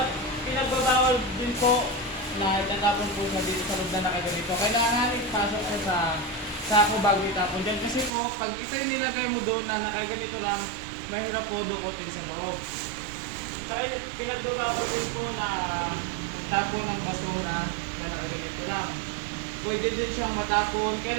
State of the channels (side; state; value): left; drops out; at 8.1 s